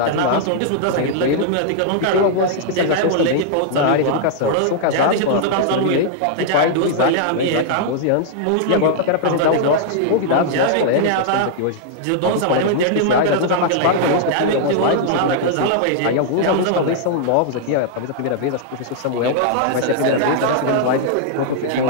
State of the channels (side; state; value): both; different; correlation -0.01